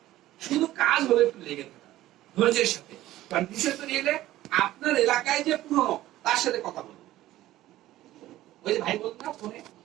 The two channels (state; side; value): quieter; left; 15.1 dB